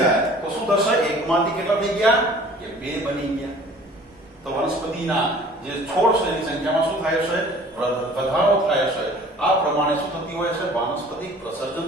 તો શું થશે એકમાંથી કેટલા થઈ ગયા કે બે બની ગયા. તો વનસ્પતિના જે છોડ છે એની સંખ્યામાં શું થાય છે વધારો થાય છે. આ પ્રમાણે શું થતી હોય છે વાનસ્પતિક પ્રસર્જન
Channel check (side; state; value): both; normal; correlation 0.49